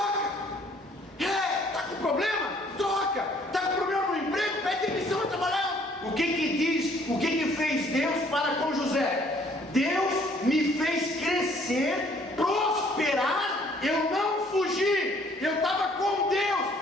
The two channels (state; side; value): normal; both; correlation 0.61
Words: Está com problema? Troca. Está com problema no emprego? Pede demissão e trabalhar. O que diz? O que fez Deus para com José? Deus me fez crescer, prosperar. Eu não fugi. Eu estava com Deus.